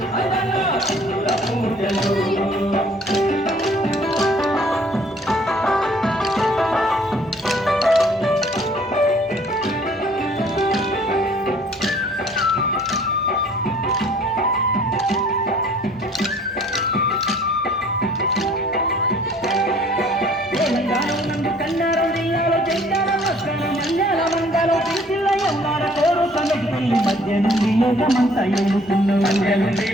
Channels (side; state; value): both; normal; correlation 0.56